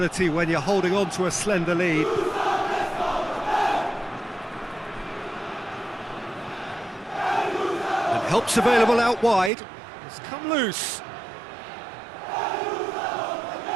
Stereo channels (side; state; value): left; drops out; at 9.5 s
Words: when you're holding on to a slender lead. And help's available out wide. It's come loose.